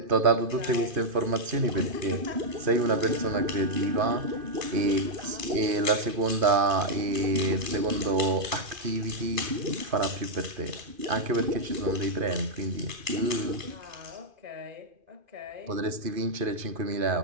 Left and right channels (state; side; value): late; left; 2.5 ms